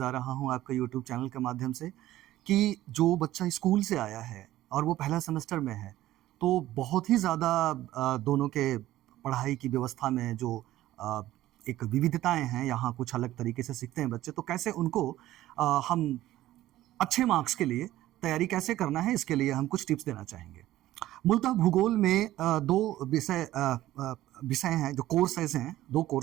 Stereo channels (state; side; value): quieter; left; 14.8 dB